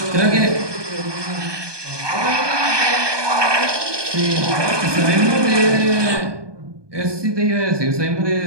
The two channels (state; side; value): late; left; 1.2 ms